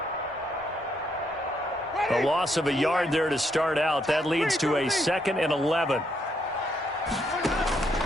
A loss of a yard there to start out. That leads to a 2nd and 11.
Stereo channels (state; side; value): normal; both; correlation 0.75